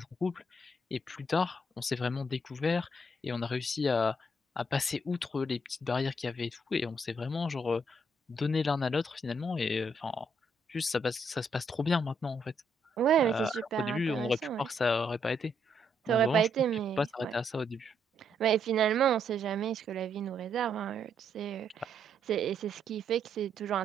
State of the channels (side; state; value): both; normal; correlation 0.74